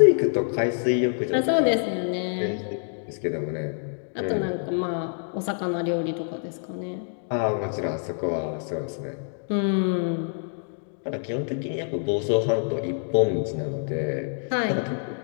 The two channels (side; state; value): right; silent; digital silence